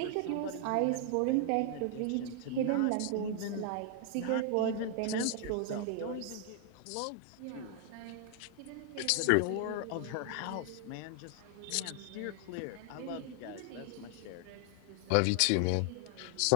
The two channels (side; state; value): both; different; correlation 0.00